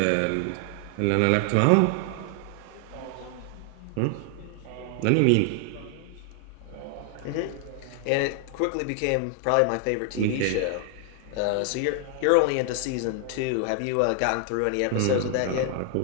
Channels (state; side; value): different; both; correlation 0.00